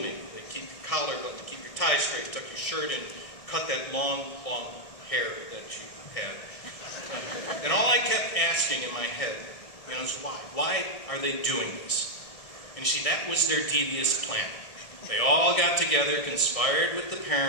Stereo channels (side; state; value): right; late; 1.6 ms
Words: They keep your collar buttoned, keep your tie straight, tuck your shirt in, cut that long, long hair that you had. And all I kept asking in my head, is why? Why are they doing this? And you see, that was their devious plan. They all got together, conspired with the